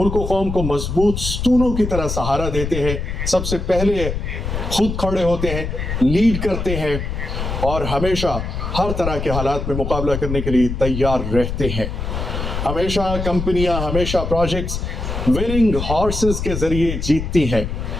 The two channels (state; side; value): noise; left; rumble, 4 dB below the sound